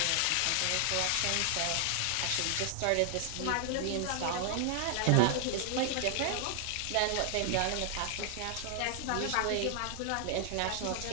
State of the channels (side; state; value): both; different; correlation 0.00